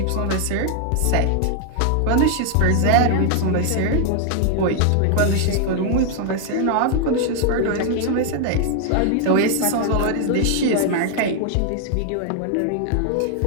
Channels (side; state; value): both; different; correlation 0.00